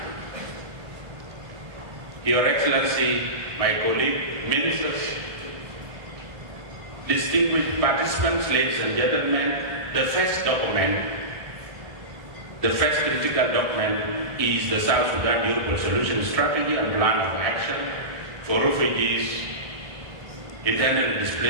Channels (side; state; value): left; late; 1.7 ms